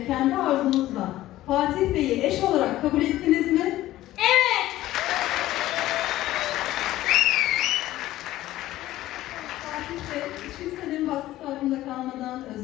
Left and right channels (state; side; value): quieter; right; 15.2 dB